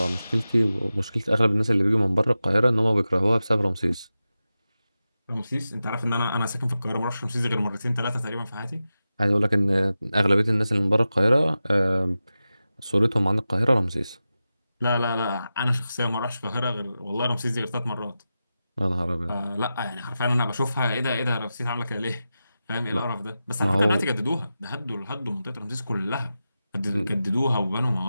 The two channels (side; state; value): both; inverted; correlation -0.93